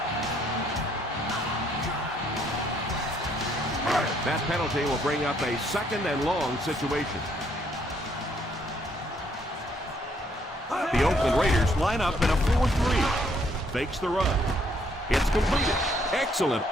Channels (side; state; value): both; normal; correlation 0.68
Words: That penalty will bring up a second and long situation. The Oakland Raiders line up in a 4-3. Fakes the run. It's completed. Excellent